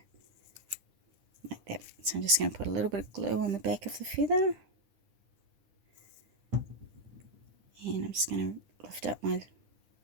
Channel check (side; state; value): left; late; 10 ms